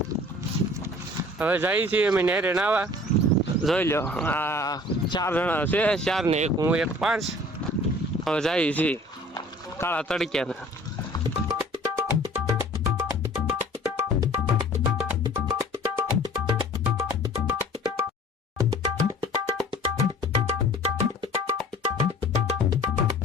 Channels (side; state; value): both; normal; correlation 0.49